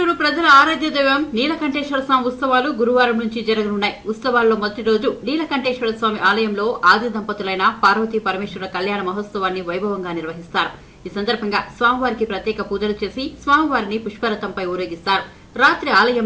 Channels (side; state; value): both; identical; correlation 1.00